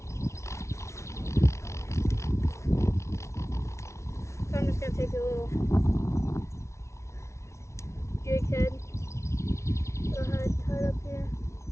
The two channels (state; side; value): late; right; 0.14 ms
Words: So I'm just gonna take a little jig head that I had tied up here.